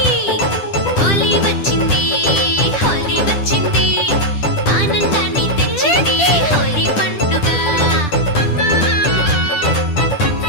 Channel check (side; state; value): right; late; 10 ms